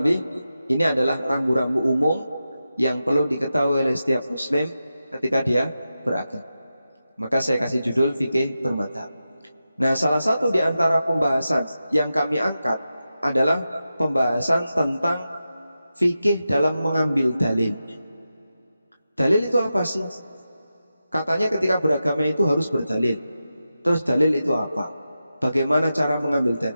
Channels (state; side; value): inverted; both; correlation -0.91